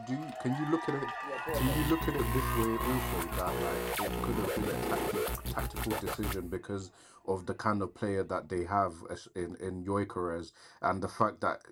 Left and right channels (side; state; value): both; identical; correlation 1.00